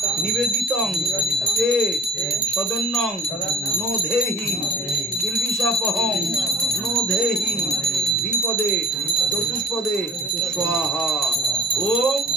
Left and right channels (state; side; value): normal; both; correlation 0.49